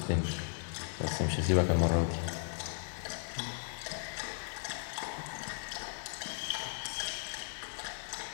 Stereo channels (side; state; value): right; silent; digital silence